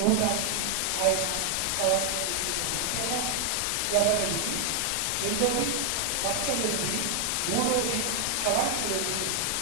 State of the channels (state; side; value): different; both; correlation 0.00